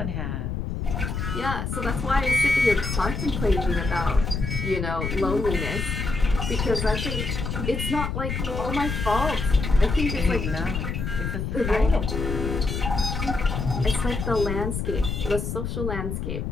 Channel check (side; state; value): left; noise; rumble, 3 dB below the sound